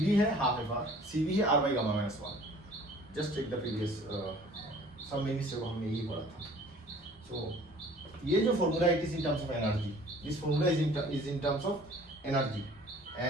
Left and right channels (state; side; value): normal; both; correlation 0.51